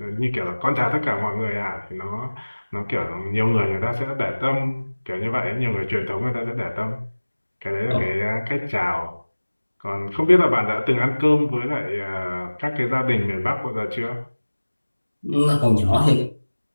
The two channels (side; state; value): both; inverted; correlation -1.00